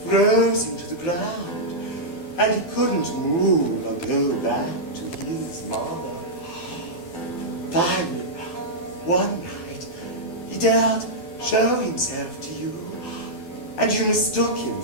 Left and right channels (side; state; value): right; late; 12 ms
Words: froze him to the ground, and he couldn't move or go back to his mother. Finally, one night, he dared show himself to you, and you mistook him